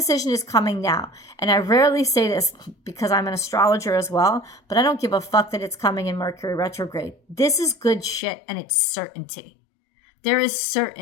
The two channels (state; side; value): drops out; right; at 8.2 s